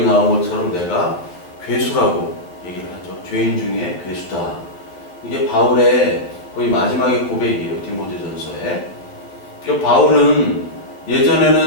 나온 것처럼 내가 괴수라고 얘기를 하죠. 죄인 중에 괴수다. 이게 바울의 거의 마지막의 고백이에요. 디모데전서에. 그러니까 바울은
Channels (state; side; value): late; right; 11 ms